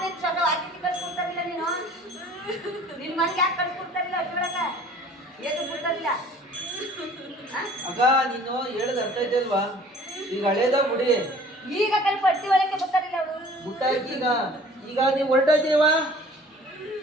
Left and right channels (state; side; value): normal; both; correlation 0.50